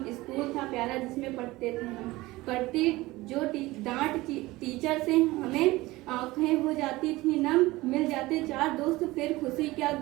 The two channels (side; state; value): left; quieter; 19.6 dB